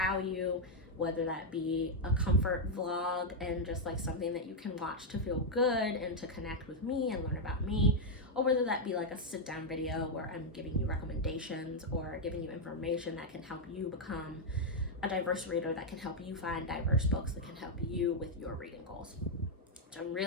whether that be a comfort vlog and just like something that you can watch to feel good and to connect with me and learn about me, or whether that be like a sit down video where I'm giving you recommendations or giving you information that can help you become a diverse reader, that can help you find diverse books, that can help you with your reading goals. So I'm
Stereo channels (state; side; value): normal; both; correlation -0.01